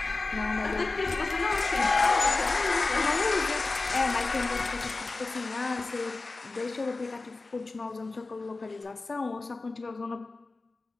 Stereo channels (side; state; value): right; quieter; 3.5 dB